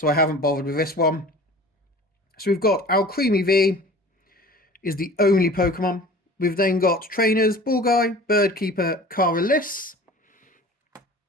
I haven't bothered with this one. So we've got Alcremie V is the only Pokemon. We've then got trainers, Ball Guy, Bird Keeper, Caralis,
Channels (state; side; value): normal; both; correlation 0.42